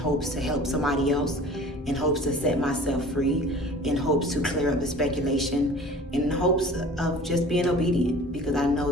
to help somebody else, in hopes to set myself free, in hopes to clear up the speculation, in hopes of just being obedient, because I know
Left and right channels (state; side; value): normal; both; correlation 0.44